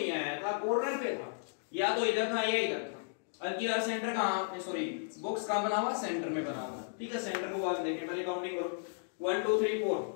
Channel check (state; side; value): silent; right; digital silence